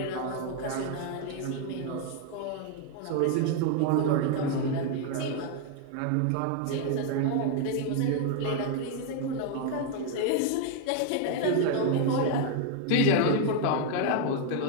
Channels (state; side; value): different; both; correlation 0.00